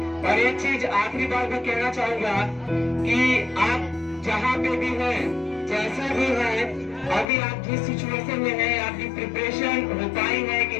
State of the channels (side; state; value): right; drops out; at 7.2 s